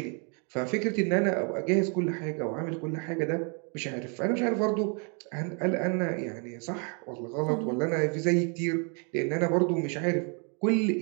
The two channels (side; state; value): left; quieter; 37.5 dB